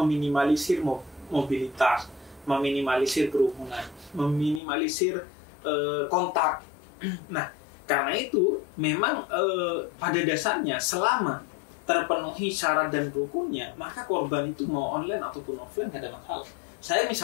mobilitas, meminimalisir kerumunan, meminimalisir kontak. Nah, karena itu memang pada dasarnya selama terpenuhi syarat dan rukunnya, maka korban itu mau online ataupun offline nggak ada masalah. Saya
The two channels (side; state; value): right; drops out; at 4.6 s